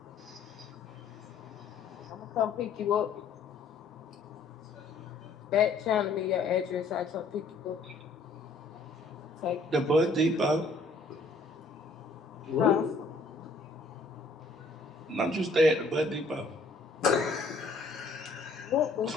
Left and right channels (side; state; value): right; quieter; 3.3 dB